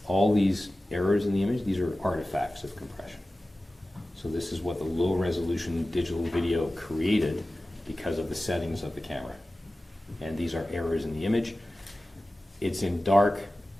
all these errors in the image. These are artifacts of compression. So this is what the low resolution digital video created because of the settings of the camera. And these are errors in the image. It's in dark.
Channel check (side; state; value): both; normal; correlation 0.96